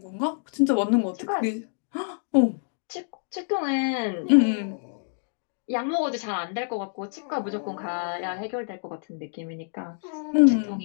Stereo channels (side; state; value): right; silent; digital silence